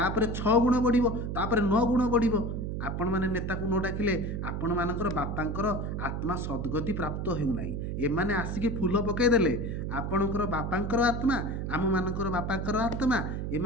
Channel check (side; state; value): right; noise; hum, 3 dB below the sound